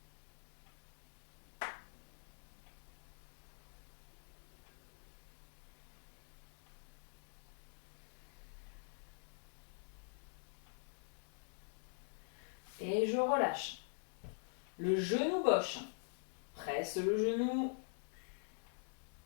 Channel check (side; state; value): right; silent; digital silence